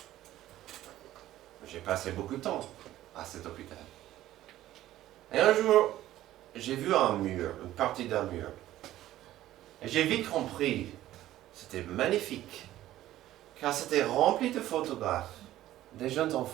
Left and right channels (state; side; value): quieter; left; 14.2 dB